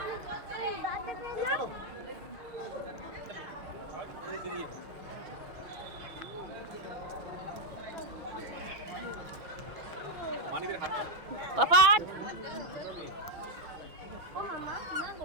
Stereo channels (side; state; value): left; late; 6.1 ms